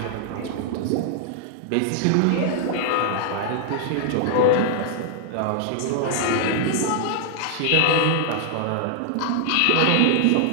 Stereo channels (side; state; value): both; different; correlation 0.00